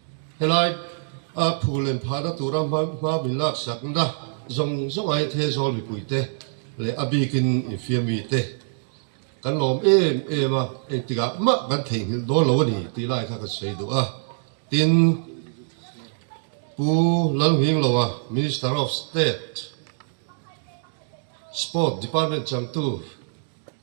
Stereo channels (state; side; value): silent; left; digital silence